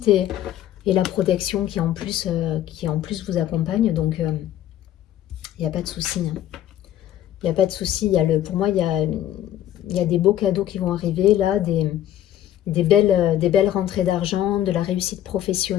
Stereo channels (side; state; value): right; quieter; 12.0 dB